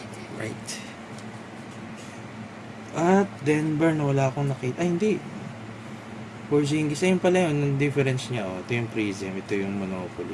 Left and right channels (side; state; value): both; identical; correlation 1.00